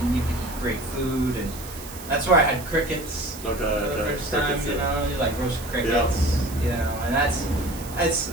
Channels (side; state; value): right; noise; hiss, 14 dB below the sound